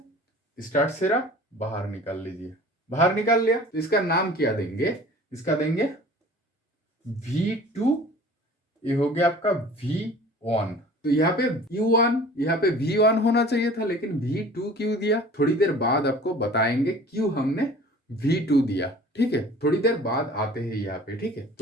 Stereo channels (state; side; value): normal; both; correlation 0.45